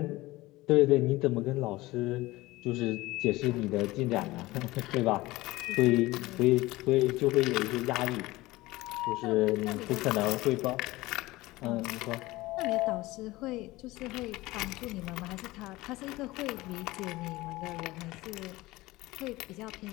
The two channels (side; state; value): right; quieter; 19.4 dB